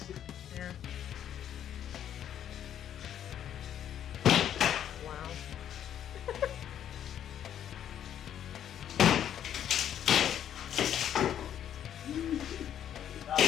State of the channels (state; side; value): quieter; right; 10.0 dB